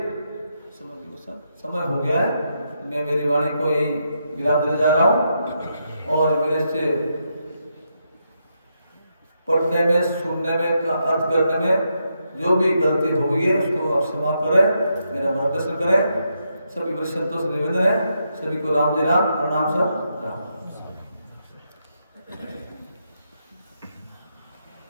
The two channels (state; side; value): inverted; both; correlation -0.81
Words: समय हो गया है, मैं मेरी वाणी को यही विराम देने जा रहा हूँ। और मेरे से पढ़ने में, सुनने में, अर्थ करने में जो भी गलती हो गई है उसको आप क्षमा करें, मेरा मार्गदर्शन करें। सभी बड़े संतों से निवेदन है, सभी को राम जय राम, प्रणाम सब राम।